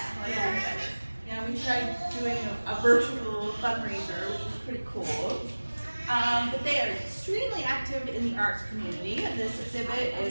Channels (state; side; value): inverted; both; correlation -1.00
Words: Yeah, we tried doing a virtual fundraiser, which was pretty cool. But they are extremely active in the arts community, and this exhibit